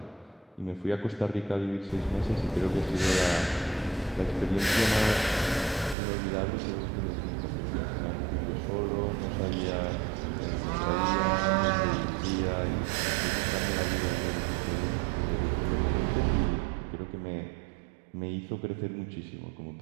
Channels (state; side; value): drops out; left; at 6.0 s